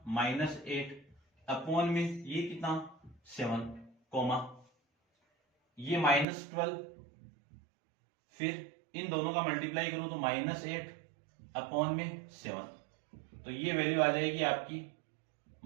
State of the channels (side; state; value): left; drops out; at 6.2 s